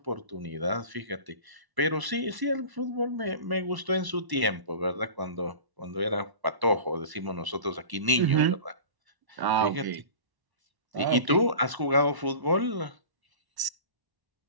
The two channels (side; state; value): left; late; 1.0 ms